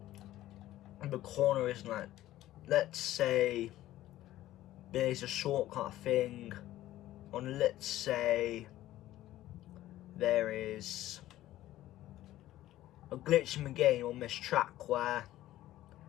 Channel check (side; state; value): right; quieter; 14.5 dB